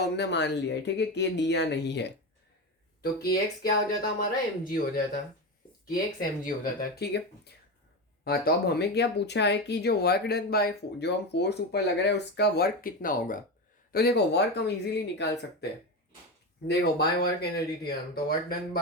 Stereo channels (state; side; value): normal; both; correlation 0.19